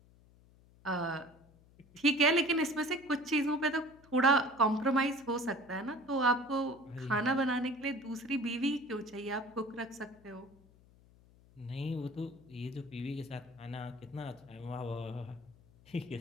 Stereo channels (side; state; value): left; noise; hum, 27 dB below the sound